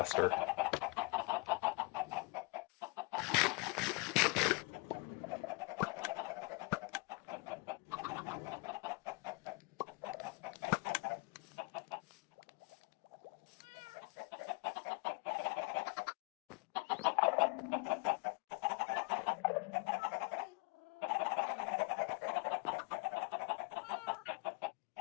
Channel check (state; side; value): quieter; right; 30.0 dB